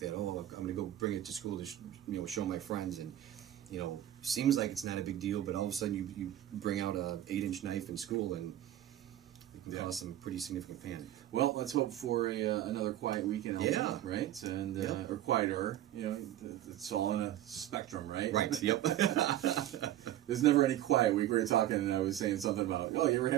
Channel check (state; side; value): quieter; left; 13.0 dB